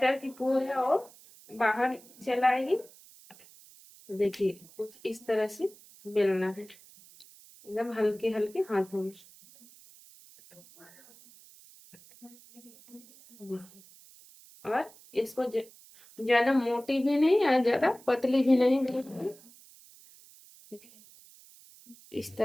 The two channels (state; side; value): noise; right; hiss, 23 dB below the sound